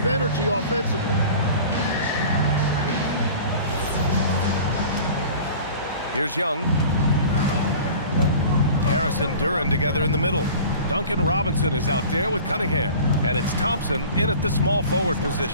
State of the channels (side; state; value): both; inverted; correlation -0.42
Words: energy offensively. Here's Young. Harris and Duren together in the middle. Duncan Robinson is out there with Cunningham. And it's Thompson in at the small forward